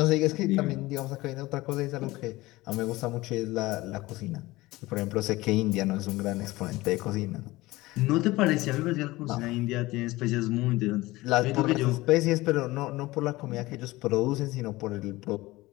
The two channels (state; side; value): quieter; right; 19.5 dB